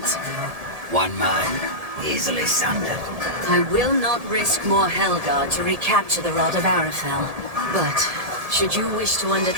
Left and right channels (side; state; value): left; late; 1.7 ms